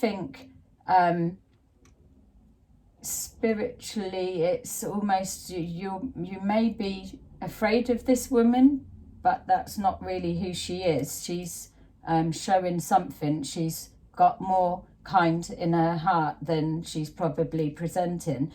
spiritually, it's almost, you may be afraid of this woman, but that's not really who she is. She's showing something. She's got more kind in her heart than she's probably presenting,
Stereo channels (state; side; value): identical; both; correlation 1.00